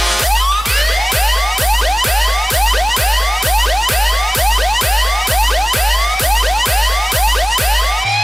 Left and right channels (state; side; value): normal; both; correlation 0.97